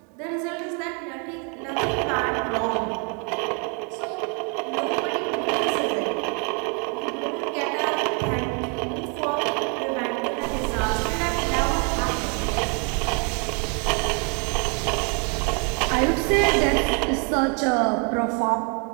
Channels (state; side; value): quieter; left; 36.3 dB